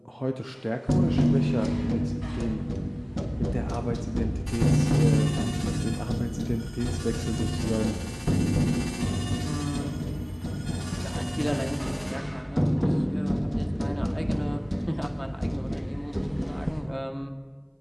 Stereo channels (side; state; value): both; identical; correlation 1.00